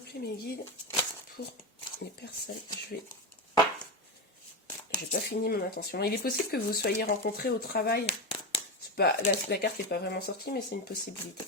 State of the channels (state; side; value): normal; both; correlation 0.15